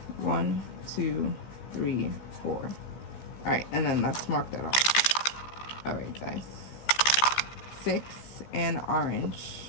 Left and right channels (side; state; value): right; late; 15 ms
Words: 1, 2, 3, 4. All right, and then let's mark that off. All right, guys. 6 and orange.